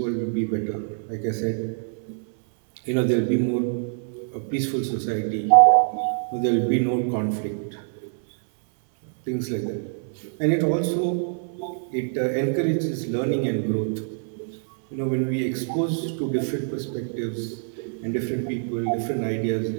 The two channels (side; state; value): left; silent; 61 dB below the other